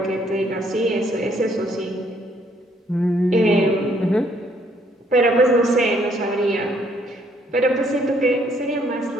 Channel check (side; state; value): both; normal; correlation 0.67